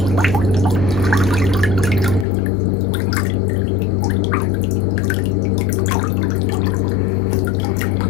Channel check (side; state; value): right; drops out; at 2.2 s